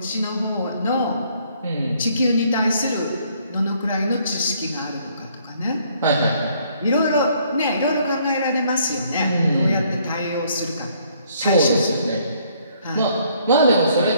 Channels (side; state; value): both; inverted; correlation -0.65